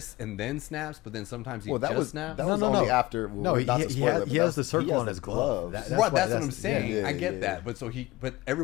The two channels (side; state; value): right; quieter; 19.7 dB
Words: and then snaps, but then sometimes he snaps. That was only after. Well, No, not to spoil it, he has the circle on his glove. gloves. That's what I'm saying. I get that, but but